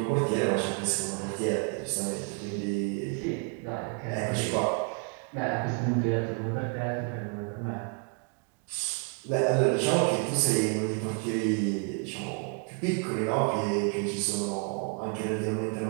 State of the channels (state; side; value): quieter; left; 38.3 dB